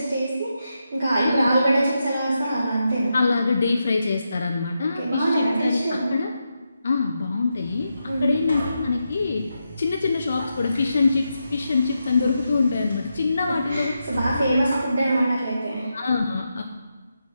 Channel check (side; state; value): both; inverted; correlation -0.86